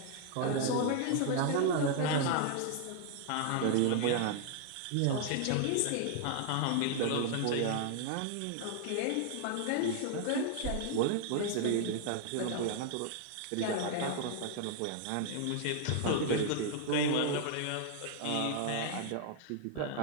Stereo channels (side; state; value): both; different; correlation 0.00